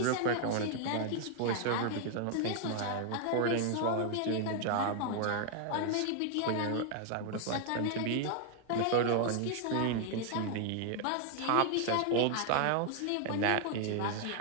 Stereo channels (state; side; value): different; both; correlation 0.00